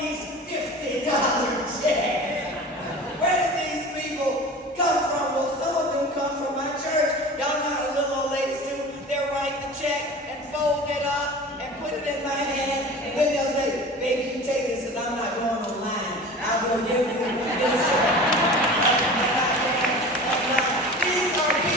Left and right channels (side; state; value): both; normal; correlation 0.37